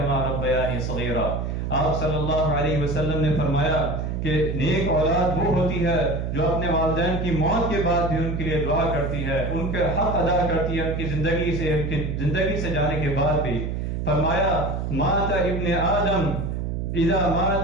ربیانی صغیرا. آپ صلی اللہ علیہ وسلم نے فرمایا کہ نیک اولاد وہ ہوتی ہے جو اپنے والدین کی موت کے بعد بھی ان کے لیے دعا کرتی ہے، ان کے حق ادا کرتی ہے ان کی زندگی سے جانے کے بعد بھی. فرمایا مات ابن آدم اذا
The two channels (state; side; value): noise; right; hum, 2 dB below the sound